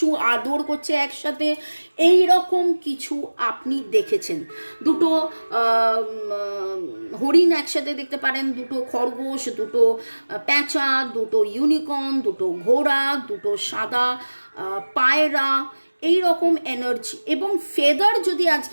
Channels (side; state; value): both; inverted; correlation -1.00